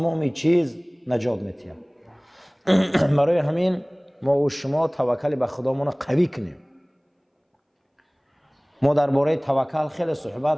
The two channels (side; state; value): both; identical; correlation 1.00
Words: چیز نجات می‌دهد. برای همین ما و شما توکل به خدامون قوی کنیم. ما درباره توکل خیلی